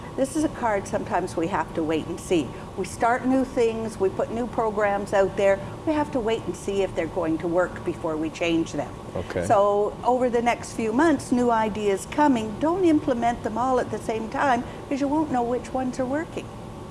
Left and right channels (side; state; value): both; identical; correlation 1.00